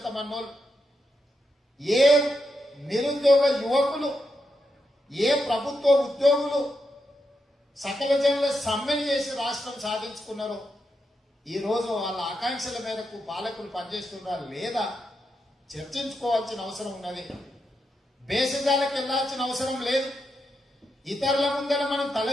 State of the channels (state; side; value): normal; both; correlation 0.84